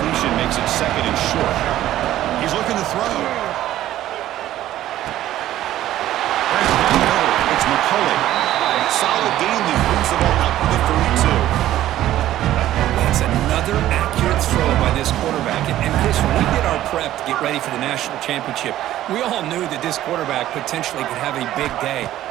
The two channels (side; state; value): left; quieter; 13.5 dB